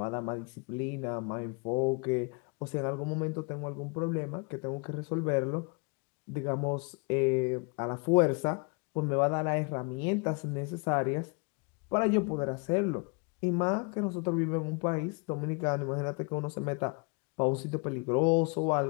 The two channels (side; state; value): right; quieter; 32.5 dB